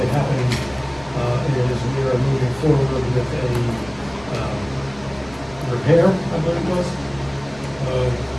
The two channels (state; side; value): noise; left; rumble, 22 dB below the sound